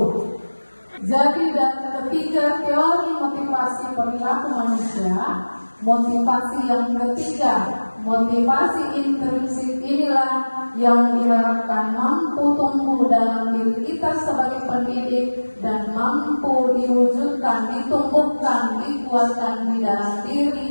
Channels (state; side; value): inverted; both; correlation -1.00